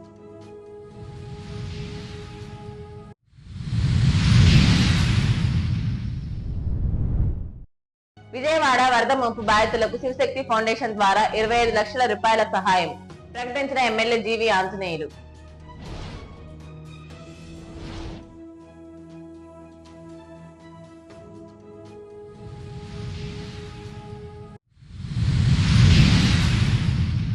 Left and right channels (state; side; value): identical; both; correlation 1.00